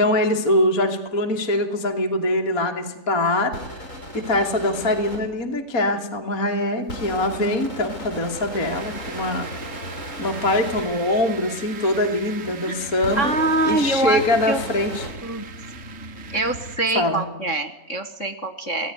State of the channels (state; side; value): late; right; 4.2 ms